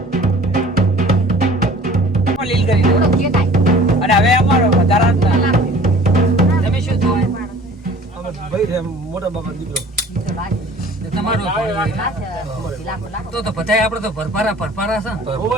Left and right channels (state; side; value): normal; both; correlation 0.48